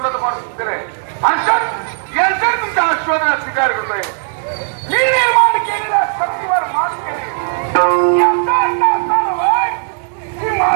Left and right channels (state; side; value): silent; left; 62 dB below the other